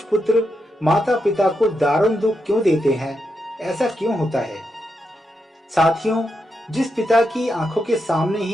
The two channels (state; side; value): normal; both; correlation 0.84